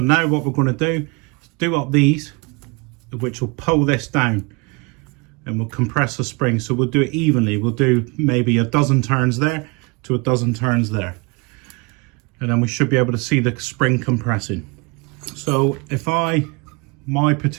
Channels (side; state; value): left; quieter; 29.1 dB